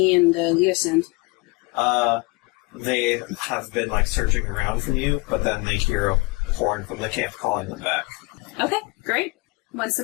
and Leosin? They have been, like, searching around for you, but then they hear a horn from the camp calling them back. Okay, great. Once the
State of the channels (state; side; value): quieter; right; 26.6 dB